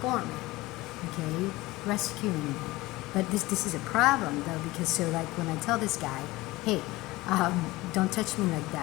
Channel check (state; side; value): quieter; right; 19.7 dB